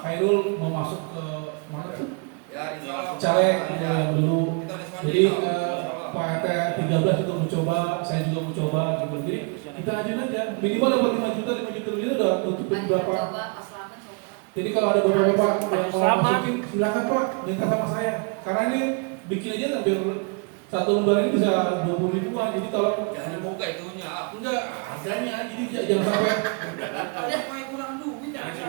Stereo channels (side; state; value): left; quieter; 34.4 dB